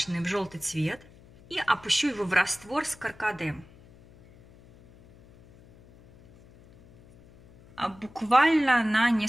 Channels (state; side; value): noise; left; hum, 25 dB below the sound